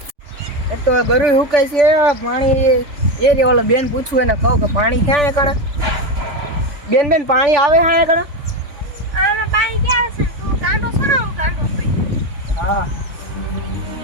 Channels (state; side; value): late; left; 3.5 ms